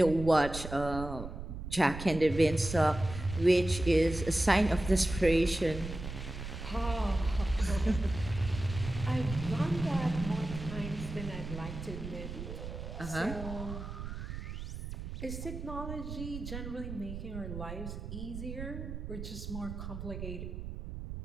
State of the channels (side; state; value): right; noise; rumble, 8 dB below the sound